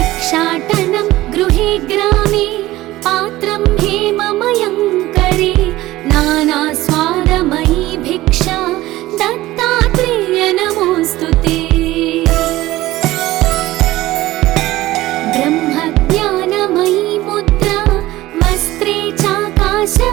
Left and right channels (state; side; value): quieter; left; 17.0 dB